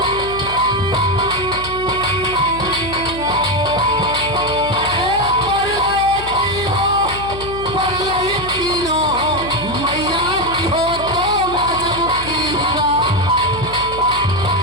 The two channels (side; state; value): left; noise; hum, 12 dB below the sound